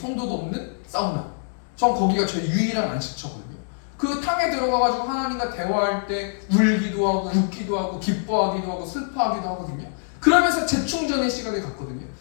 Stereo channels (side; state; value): right; silent; digital silence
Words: 없는 사우나. 전 거기가 저희 유일한 안식처거든요. 그 탕에 들어가가지고 하나님과 대화할 때 울기도 하고 웃기도 하고 기뻐하기도 하고 슬퍼하기도 하거든요. 그러면서 재충전의 시간을 갖거든요.